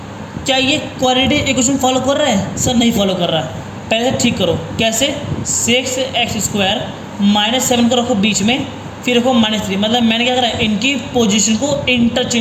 क्या ये क्वाड्रेटिक इक्वेशन फॉलो कर रहा है, सर नहीं फॉलो कर रहा है। पहले से ठीक करो, कैसे, 6x² -7 को रखो बीच में, फिर रखो -3, मतलब मैंने क्या करा, इनकी पोजीशन को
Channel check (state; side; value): identical; both; correlation 1.00